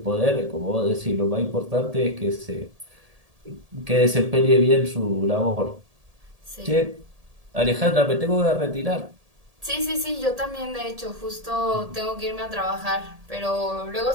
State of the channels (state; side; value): late; left; 1.8 ms